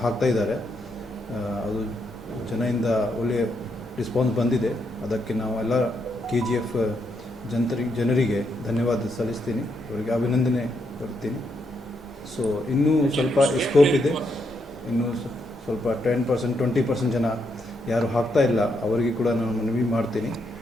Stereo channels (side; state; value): both; normal; correlation 0.79